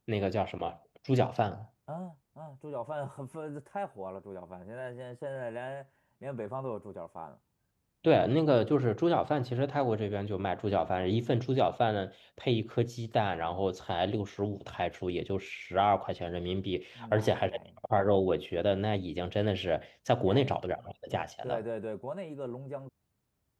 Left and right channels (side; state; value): both; identical; correlation 1.00